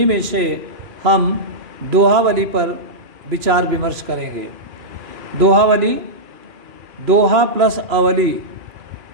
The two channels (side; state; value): left; late; 2.4 ms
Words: में से हम दोहावली पर विचार विमर्श करेंगे। दोहावली, दोहा प्लस अवली।